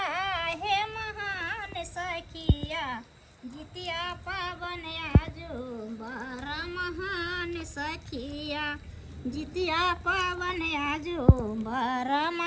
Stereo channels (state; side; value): identical; both; correlation 1.00